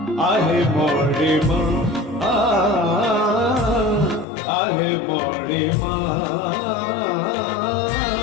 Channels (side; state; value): right; drops out; at 4.2 s